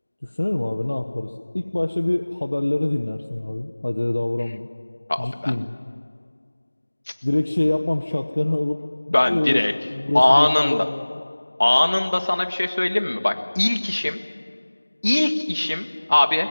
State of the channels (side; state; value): both; inverted; correlation -1.00